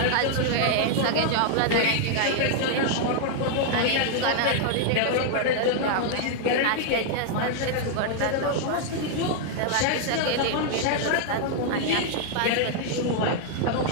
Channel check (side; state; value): both; different; correlation -0.01